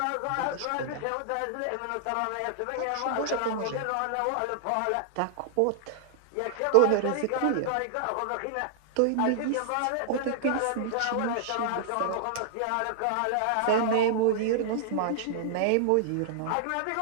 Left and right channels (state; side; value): different; both; correlation -0.01